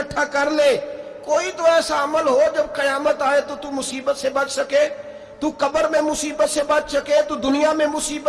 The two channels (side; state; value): both; identical; correlation 1.00